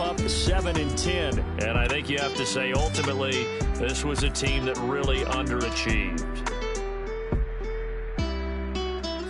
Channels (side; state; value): both; identical; correlation 1.00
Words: 7-10. And I think you have to say, ultimately, this was a team that really underachieved.